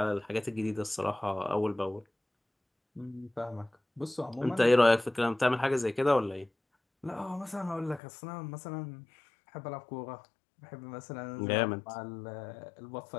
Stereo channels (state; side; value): drops out; right; at 8.0 s